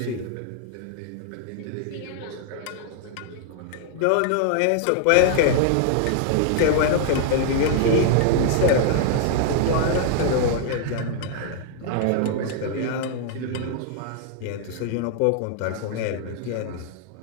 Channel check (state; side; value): different; both; correlation 0.00